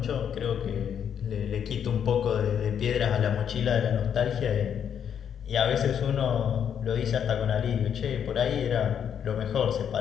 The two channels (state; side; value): quieter; right; 8.4 dB